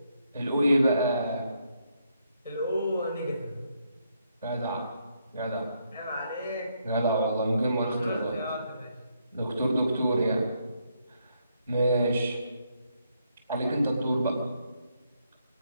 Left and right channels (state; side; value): inverted; both; correlation -0.76